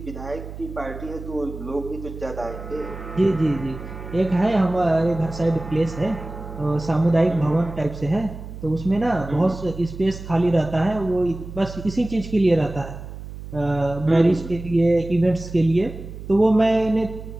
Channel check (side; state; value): right; noise; hum, 12 dB below the sound